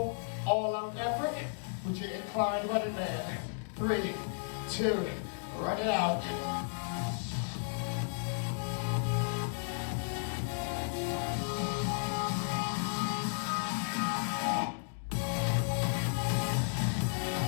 All-out effort with your inclined running man. 3, 2, run it out.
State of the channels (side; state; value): right; silent; digital silence